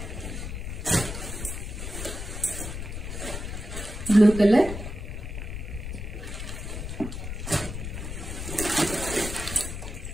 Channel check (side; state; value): left; noise; rumble, 6 dB below the sound